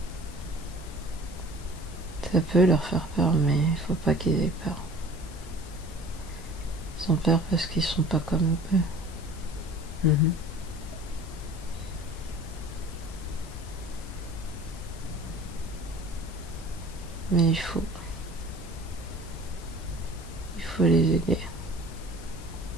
Ça peut leur faire peur, mais il faut pas qu'ils aient peur. Ils ont peur parce qu'ils sont pas comme eux. Mhm. Mais il faut les aider.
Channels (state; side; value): noise; left; hiss, 21 dB below the sound